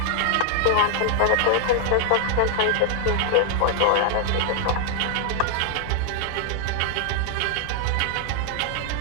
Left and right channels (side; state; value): both; different; correlation 0.00